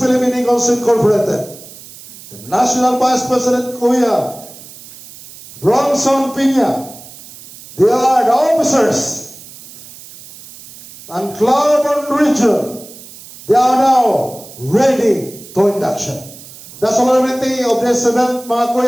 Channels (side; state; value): right; noise; hiss, 18 dB below the sound